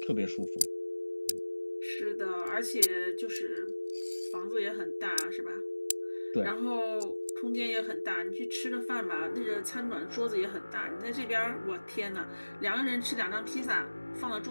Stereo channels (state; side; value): inverted; both; correlation -1.00